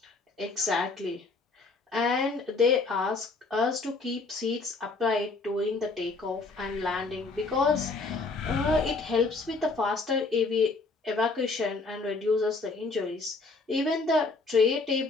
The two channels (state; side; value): quieter; right; 3.9 dB